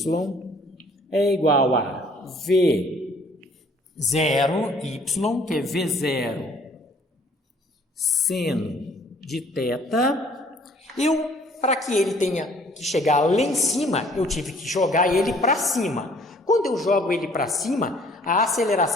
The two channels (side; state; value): both; normal; correlation 0.57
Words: é igual a V0y, que é V0 seno de θ. Para que ele tenha que chegar lá em cima, eu tive que jogar ele para cima. Quando eu jogo ele para cima, a